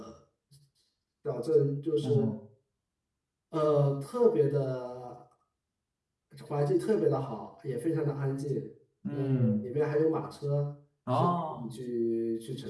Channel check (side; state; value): both; identical; correlation 1.00